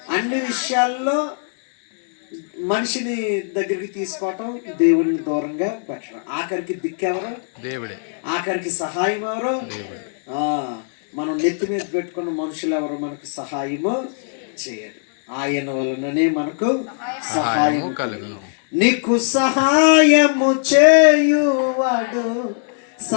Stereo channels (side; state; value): right; silent; 66 dB below the other